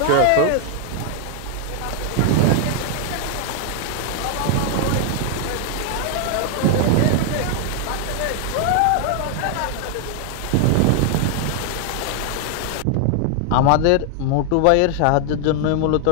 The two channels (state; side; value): different; both; correlation 0.00